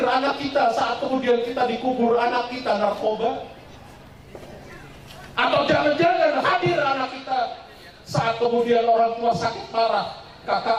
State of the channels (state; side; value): identical; both; correlation 1.00